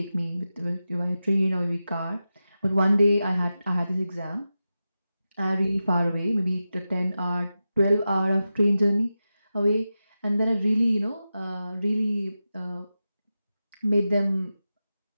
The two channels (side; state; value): both; inverted; correlation -0.92